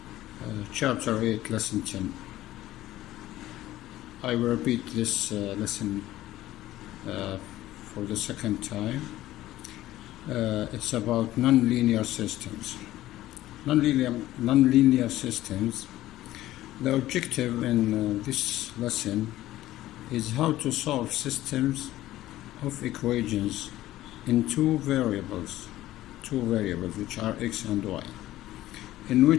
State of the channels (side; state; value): right; quieter; 15.1 dB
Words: Chapter 8, Lesson 10. I will repeat this lesson for the second time. It's about nonlinear systems. Nonlinear systems. The objective in this lesson is how to solve systems of equations in two variables which are x and y, in